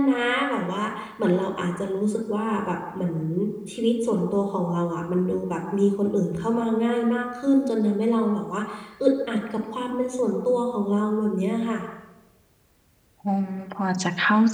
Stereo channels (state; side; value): identical; both; correlation 1.00